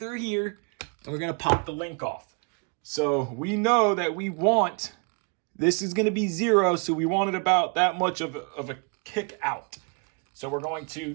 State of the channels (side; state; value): left; quieter; 35.4 dB